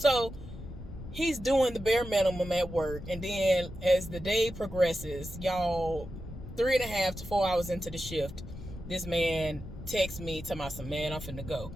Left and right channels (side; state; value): left; noise; rumble, 12 dB below the sound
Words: he's doing the bare minimum at work. And then as the day progresses, y'all, 3.5 to 4 hours into the shift, this man texts me, tell me, man, I'm finna go.